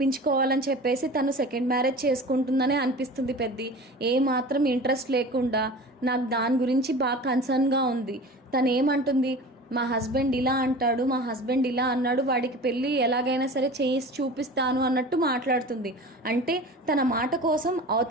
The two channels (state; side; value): normal; both; correlation 0.37